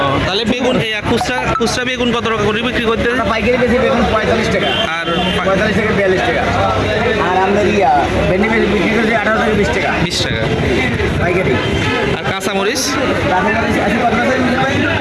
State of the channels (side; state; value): both; identical; correlation 1.00